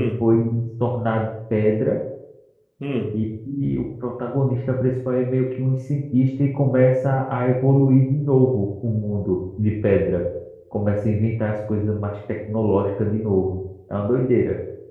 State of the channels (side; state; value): both; identical; correlation 1.00